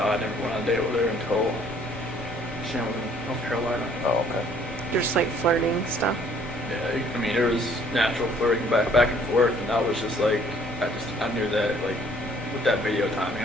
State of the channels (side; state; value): both; normal; correlation 0.59